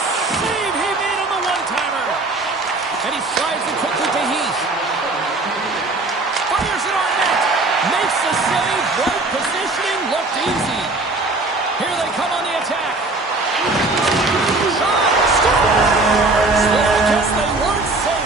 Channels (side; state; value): left; quieter; 3.2 dB